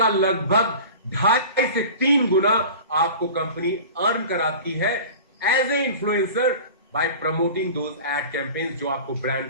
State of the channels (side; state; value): both; inverted; correlation -0.38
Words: लगभग 2.5 से 3 गुना आपको कंपनी अर्न कराती है as a influencer by promoting those ad campaigns जो आपको